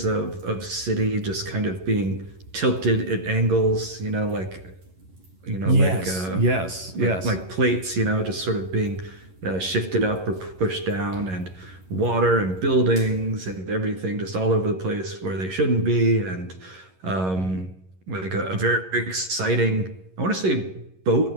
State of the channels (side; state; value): left; late; 11 ms